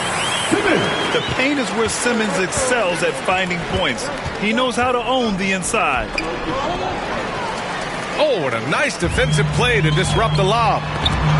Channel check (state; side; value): identical; both; correlation 1.00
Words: The paint is where Simmons excels at finding points. He knows how to own the inside. Oh, and a nice defensive play to disrupt the lob.